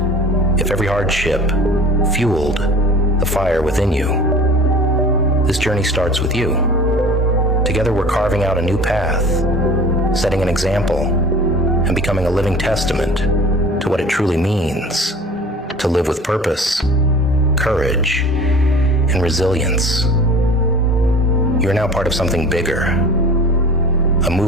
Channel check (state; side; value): normal; both; correlation 0.42